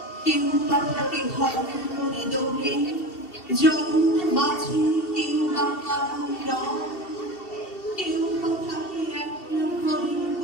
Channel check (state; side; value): late; right; 2.7 ms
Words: কেউ বা থাকে ঘরের মনে দৌড়ে জন্ম বাঁচে, কেউ বা কারণ রং, কেউ বা থাকে এক ঘরের